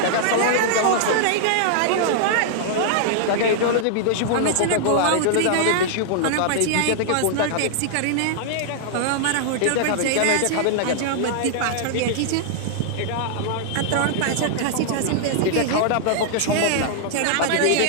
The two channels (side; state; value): both; different; correlation -0.01